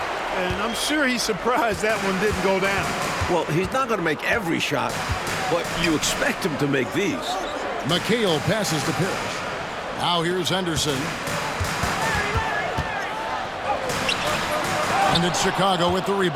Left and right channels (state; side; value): identical; both; correlation 1.00